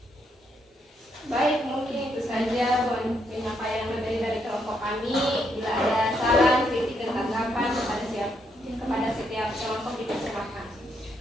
Baik, mungkin itu saja penyampaian materi dari kelompok kami. Bila ada saran, kritik, dan tanggapan kepada setiap kelompok dipersilakan.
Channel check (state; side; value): normal; both; correlation 0.76